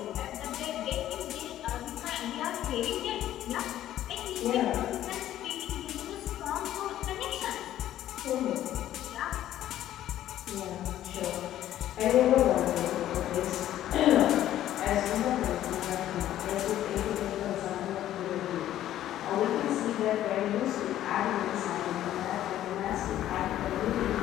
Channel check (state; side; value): quieter; right; 12.6 dB